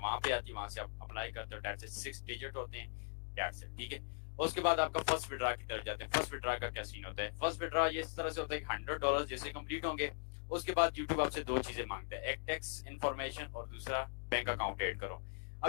वहां पे आती है, वहां से आप अप्लाई करते हो, डेट से 6 डिजिट होते हैं, डेट से, ठीक है। उसके बाद आपका फर्स्ट विड्रा की तरफ जाते हैं। फर्स्ट विड्रा का क्या सीन होता है? फर्स्ट विड्रा ये इस तरह से होता है कि $100 जैसे कंप्लीट होंगे, उसके बाद यूट्यूब आपसे दो चीजें मांगता है, एक टैक्स इन्फॉर्मेशन और दूसरा बैंक अकाउंट ऐड करो।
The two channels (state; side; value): silent; right; digital silence